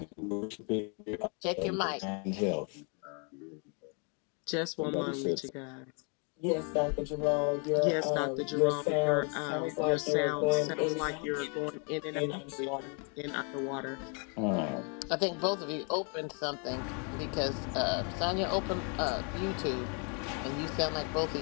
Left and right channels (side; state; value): right; quieter; 37.8 dB